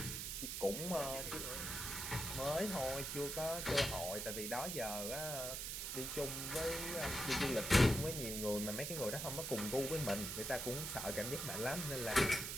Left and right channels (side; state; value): right; noise; hiss, 3 dB below the sound